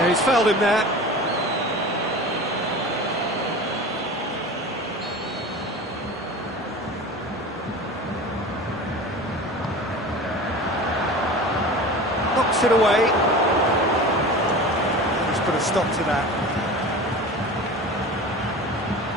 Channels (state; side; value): normal; both; correlation 0.35